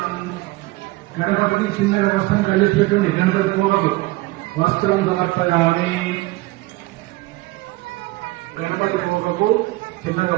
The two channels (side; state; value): left; quieter; 20.6 dB